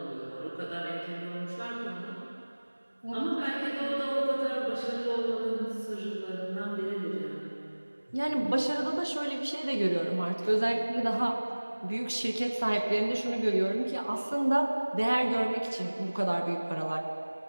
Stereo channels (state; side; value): inverted; both; correlation -1.00